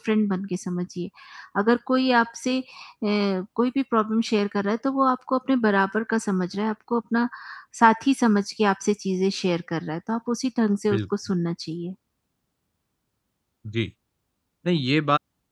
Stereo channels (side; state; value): both; identical; correlation 1.00